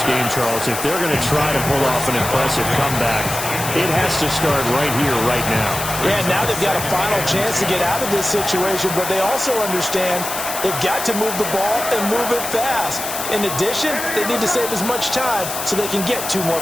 game, Charles. If they're going to try to pull off an impressive comeback, it has to start right here, right now. Yeah, now they've got a final chance to get out of this situation, but they also understand they've got to move the ball and move it fast. In addition, they need to save as much time so they can get 2 more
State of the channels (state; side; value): noise; left; hiss, 6 dB below the sound